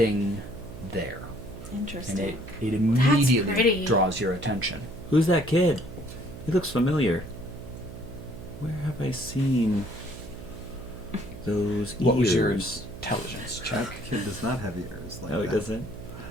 there, and Interesting. it immediately pretty. draws your attention. Who's that kid? He looks familiar. Where have I seen those What was your ears? intelligence That check? kid does not have ears like Oh, he that. doesn't?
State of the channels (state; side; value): noise; right; hum, 13 dB below the sound